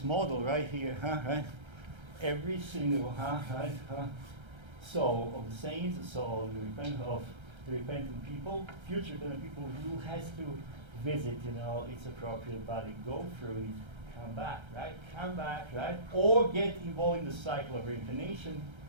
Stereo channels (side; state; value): left; late; 1.3 ms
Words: model right here, right, every single, soul of the saints, the soul of the repentant people, future repentant people who has to visit, its appropriate body, go through it, come back, right? Or get involved in the cycle of reincarnation,